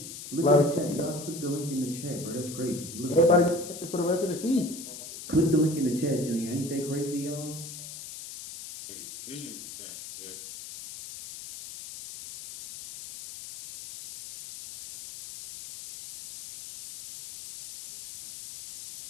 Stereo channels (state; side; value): noise; left; hiss, 11 dB below the sound